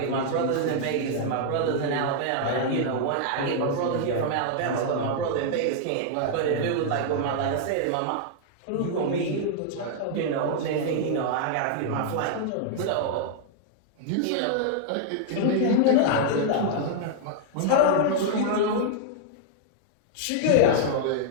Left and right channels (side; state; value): both; different; correlation -0.01